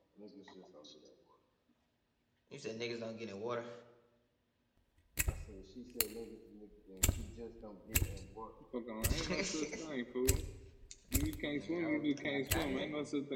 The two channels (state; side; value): identical; both; correlation 1.00